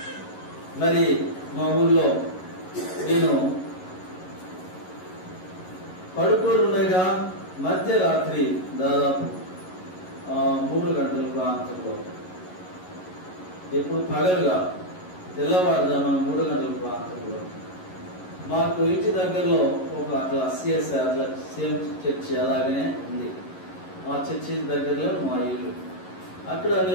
మరి మా ఊర్లో నేను పడుకొని ఉండగా మధ్యరాత్రి దాదాపు 3 గంటల ప్రాంతంలో, ఇప్పుడు పగలుగా తెల్లవారుజామున 3 గంటల ప్రాంతంలో మాకు ఇంటి దగ్గరలో ఒక అట్లా CSI అట్లా సేమ్ చర్చి అలాగనే ఉంది. ఆ చర్చి దగ్గరలో మా ఇల్లు. అక్కడ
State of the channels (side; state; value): right; late; 11 ms